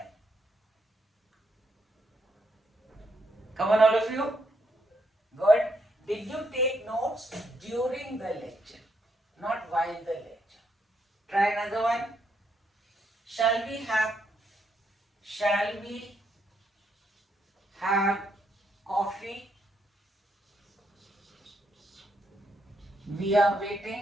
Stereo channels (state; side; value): normal; both; correlation 0.77